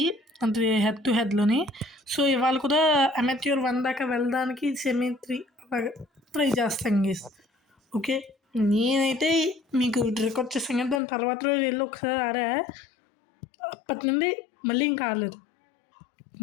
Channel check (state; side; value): drops out; right; at 11.0 s